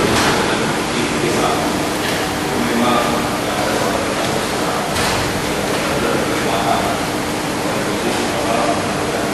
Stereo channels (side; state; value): both; identical; correlation 1.00